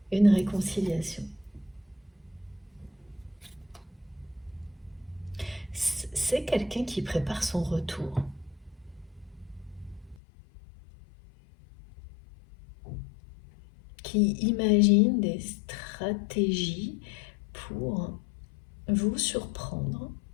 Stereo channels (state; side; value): drops out; right; at 10.2 s